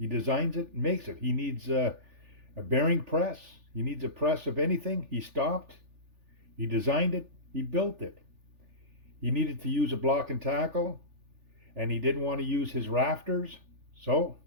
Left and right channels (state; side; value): late; left; 3.4 ms